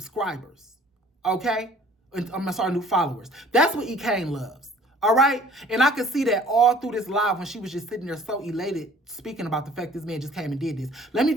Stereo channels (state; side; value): normal; both; correlation 0.53